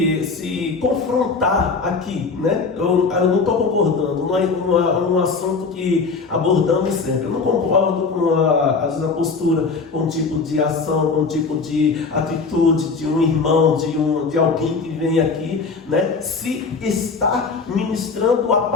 confrontar aqui, né? Eu não estou concordando, não é um assunto que abordamos sempre. Eu não concordo com às vezes a postura, com um tipo de ação, com um tipo de atitude de um irmão, de alguém que vem aqui, né? Se está ministrando a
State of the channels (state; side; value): quieter; right; 4.6 dB